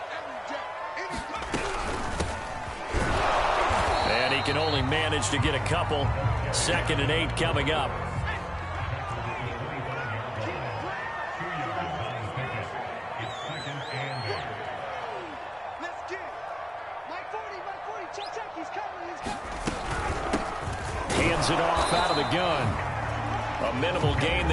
Can only manage to get a couple. 2nd and 8 coming up. Hands it off out of the gun. A minimal gain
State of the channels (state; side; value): identical; both; correlation 1.00